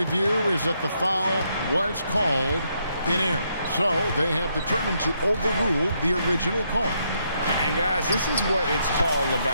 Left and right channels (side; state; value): both; inverted; correlation -0.76